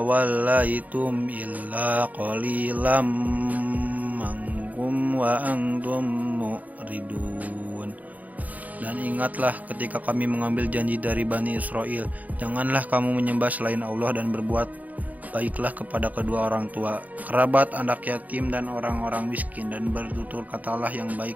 illa qalilam minkum wa antum mu'ridun. Dan ingatlah ketika kami mengambil janji dari Bani Israel, janganlah kamu menyembah selain Allah dan berbuat baiklah kepada kedua orang tua, kerabat, anak yatim, dan orang-orang miskin, dan bertutur katalah yang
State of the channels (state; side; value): late; left; 0.077 ms